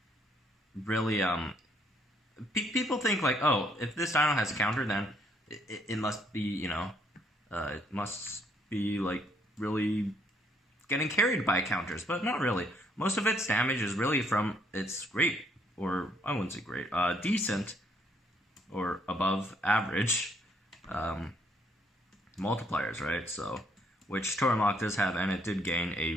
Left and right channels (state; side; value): normal; both; correlation 0.68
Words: really people think like, oh, if this dino has a counter, then it must be, it must be like really getting carried by counters, but not really. Most of its damage is really from its great, or I wouldn't say great, decent or above average multipliers, right? So, which Tuoramoloch does have, and it did gain a